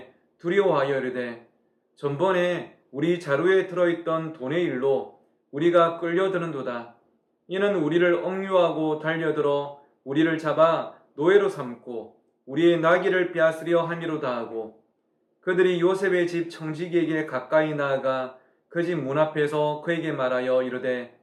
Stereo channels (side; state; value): both; identical; correlation 1.00